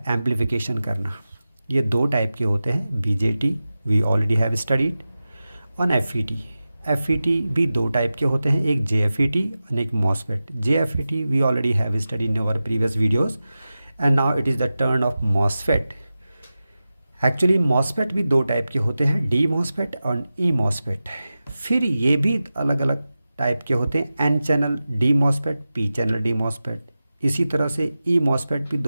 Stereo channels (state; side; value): inverted; both; correlation -0.94